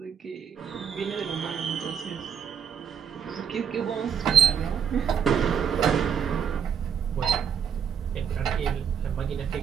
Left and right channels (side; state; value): left; quieter; 7.6 dB